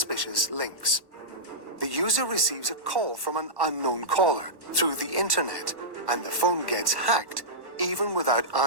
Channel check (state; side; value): late; left; 1.1 ms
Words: links. The user receives a call from an unknown caller through the internet, and the phone gets hacked even without